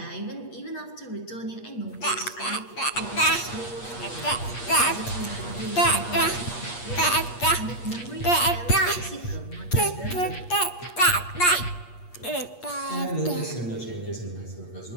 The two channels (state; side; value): late; right; 8.4 ms